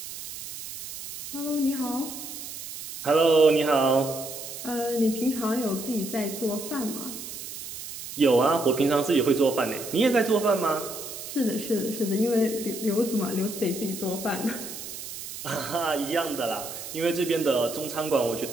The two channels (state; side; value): noise; right; hiss, 10 dB below the sound